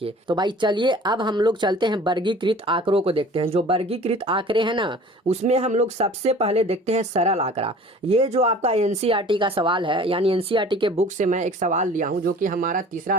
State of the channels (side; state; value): both; normal; correlation 0.46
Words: तो भाई चलिए अब हम लोग चलते हैं वर्गीकृत आंकड़ों को देखते हैं। जो वर्गीकृत आंकड़े हैं ना, उसमें हम लोग सबसे पहले देखते हैं सरल आंकड़ा। ये जो आपका एनसीईआरटी का सवाल है, यानी एनसीईआरटी के बुक से मैं एक सवाल लिया हूँ जो कि हमारा तीसरा